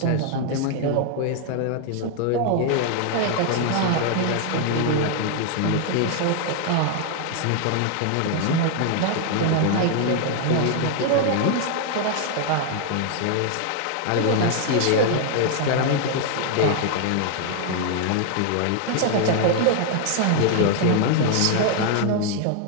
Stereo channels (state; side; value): different; both; correlation 0.00